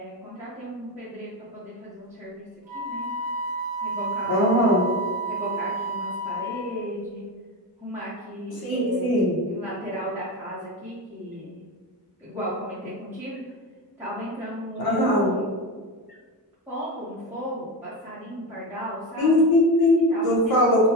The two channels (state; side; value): normal; both; correlation 0.19